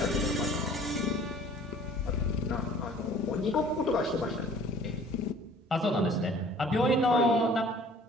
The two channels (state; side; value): normal; both; correlation 0.51